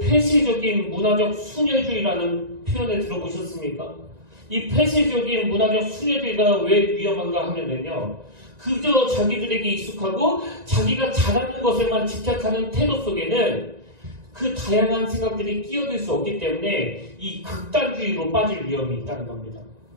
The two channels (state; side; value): late; left; 1.9 ms